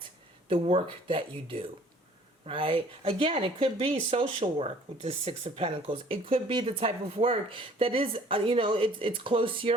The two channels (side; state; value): both; normal; correlation 0.54